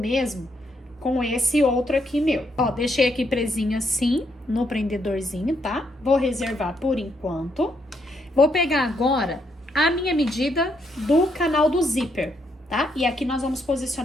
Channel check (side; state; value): both; normal; correlation 0.76